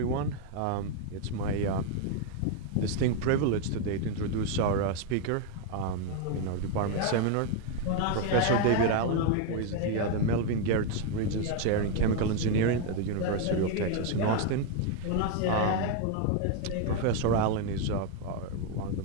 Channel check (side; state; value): both; different; correlation 0.01